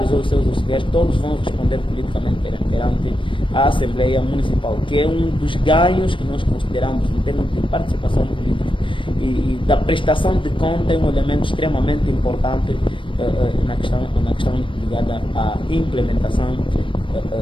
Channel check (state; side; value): late; right; 0.25 ms